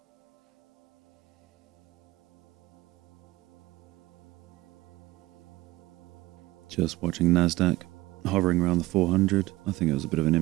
Just watching Nasdaq hovering around the 400. I think it was a bit of an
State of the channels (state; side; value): quieter; left; 18.8 dB